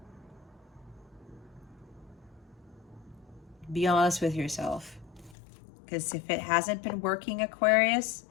Be honest with yourself. Because if it hasn't been working, Aquarius,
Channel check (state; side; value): drops out; right; at 5.4 s